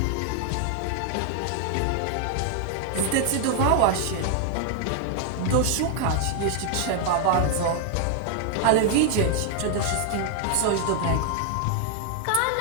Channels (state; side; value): different; both; correlation 0.00